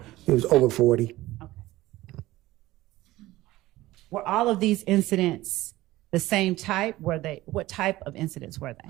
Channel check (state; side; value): quieter; left; 17.3 dB